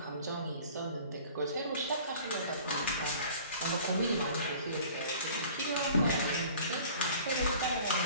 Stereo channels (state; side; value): inverted; both; correlation -0.47